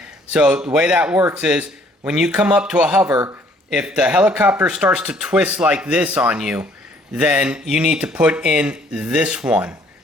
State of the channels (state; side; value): normal; both; correlation 0.61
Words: so the way that works is when you come up to a hover, if the helicopter starts to twist like this on you, then you need to put in this one